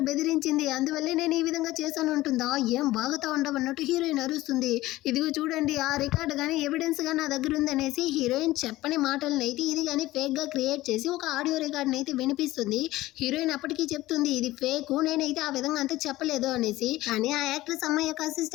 బెదిరించింది, అందువల్లే నేను ఈ విధంగా చేశాను అంటుందా. ఏం బాగుతా ఉండవన్నట్టు హీరోయిన్ అరుస్తుంది. ఇదిగో చూడండి ఆ రికార్డు కానీ ఎవిడెన్స్ గా నా దగ్గర ఉందనేసి హీరోయిన్ చెప్పని మాటలను అయితే ఇది కానీ ఫేక్ గా క్రియేట్ చేసి ఒక ఆడియో రికార్డుని అయితే వినిపిస్తుంది. హీరోయిన్ అప్పటికీ చెప్తుంది ఇది ఫేక్, నేనైతే ఆ విధంగా అంతా చెప్పలేదు అనేసి. కానీ ఆ యాక్ట్రెస్ అమ్మాయి యొక్క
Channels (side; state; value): right; quieter; 17.3 dB